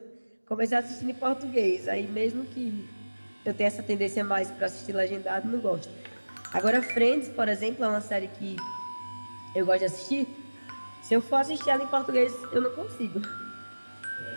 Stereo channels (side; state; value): both; inverted; correlation -1.00